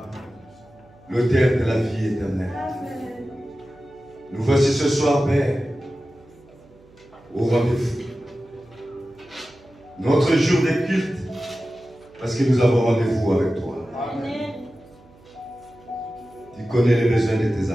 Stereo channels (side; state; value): right; noise; hum, 27 dB below the sound